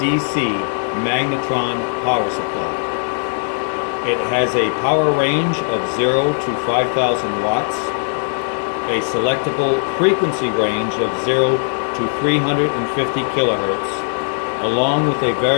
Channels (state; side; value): silent; right; digital silence